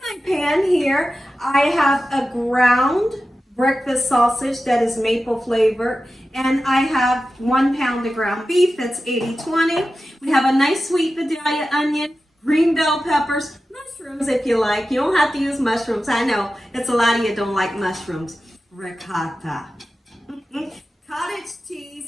pan here, I have a ground breakfast sausage that is maple flavored, and I have 1 pound of ground beef that's 80-20. We have a nice sweet Vidalia onion, green bell peppers, mushrooms if you like. You don't have to use mushrooms. I know it's a lot of you don't like mushrooms. Ricotta. Cottage cheese,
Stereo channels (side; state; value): both; normal; correlation 0.93